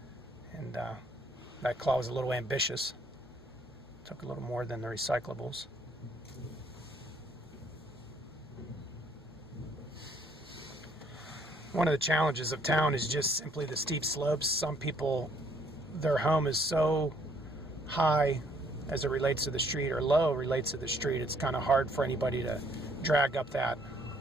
and that claw was a little ambitious. Took a little more than the recyclables. One of the challenges of town is just simply the steep slopes. Some people, their home is so high as it relates to the street, or low relates to the street, it's kind of hard for anybody to drag up that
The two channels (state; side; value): normal; both; correlation 0.65